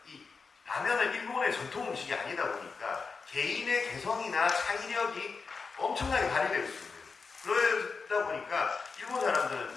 이 라면은 일본의 전통 음식이 아니다 보니까 개인의 개성이나 창의력이 엄청나게 발휘될 수 있는, 그러다 보니까 일본 사람들은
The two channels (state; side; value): quieter; right; 4.8 dB